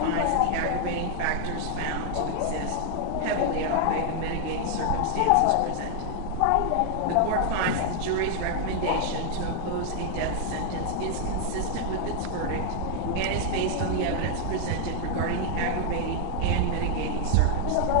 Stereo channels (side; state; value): both; different; correlation 0.00